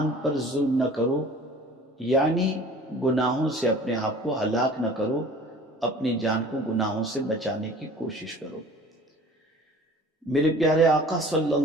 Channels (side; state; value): both; normal; correlation 0.46